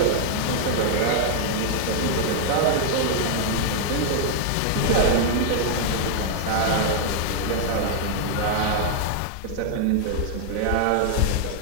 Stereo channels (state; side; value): different; both; correlation 0.00